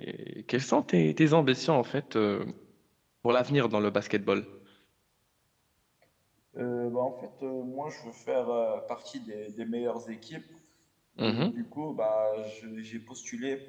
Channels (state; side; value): identical; both; correlation 1.00